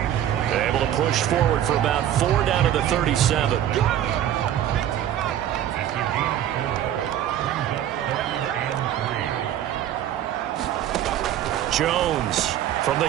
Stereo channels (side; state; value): left; quieter; 11.3 dB